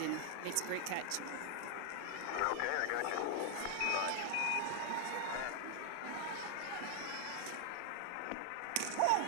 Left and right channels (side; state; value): both; different; correlation 0.00